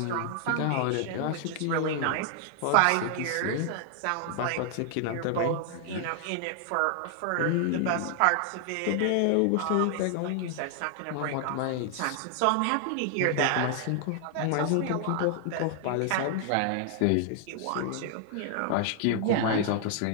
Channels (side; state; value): both; different; correlation 0.00